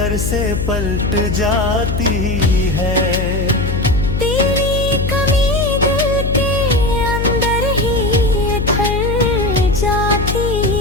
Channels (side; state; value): left; noise; hum, 1 dB below the sound